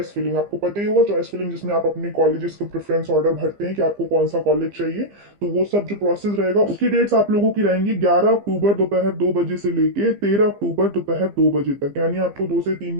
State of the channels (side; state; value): left; late; 15 ms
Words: फिलिंग, आपको पता ही होगा चॉइस फिलिंग, जिसमें आप अपने कॉलेजेस के प्रेफरेंस ऑर्डर भरते हैं कि आपको कौन सा कॉलेज चाहिए। तो वो सब जो प्रोसेस रहेगा उसकी डेट्स आप लोगों की रहेंगी 11 अक्टूबर दोपहर 2 बजे से लेके 13 अक्टूबर दोपहर 2 बजे तक। यानी आपको 2 से 3